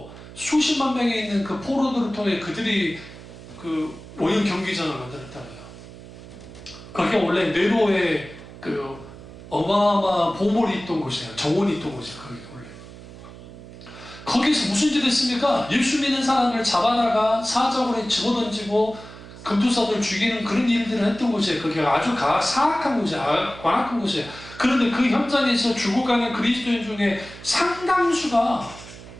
수십만 명이 있는 그 포로들을 통해 그들이 그 오염 경기장을 만들었다고요. 거기가 원래 네로의 그 어마어마한 보물이 있던 곳이에요. 정원이 있던 곳이에요. 거기 원래. 거기서 무슨 짓을 했습니까? 예수 믿는 사람을 잡아다가 사적으로 집어던지고 금투사들 죽이는 그런 일들을 했던 곳이에요. 거기가 아주 사악한 곳이에요. 관악한 곳이에요. 그런데 그 현장에서 죽어가는 그리스도인 중에 상당수가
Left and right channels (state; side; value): noise; right; hum, 16 dB below the sound